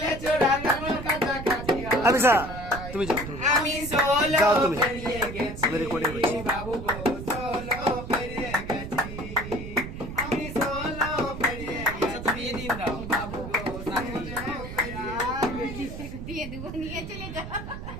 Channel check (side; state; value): right; noise; rumble, 9 dB below the sound